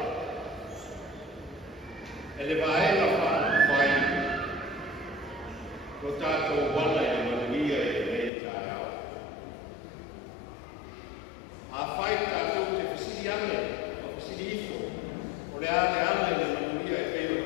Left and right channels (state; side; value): drops out; right; at 8.3 s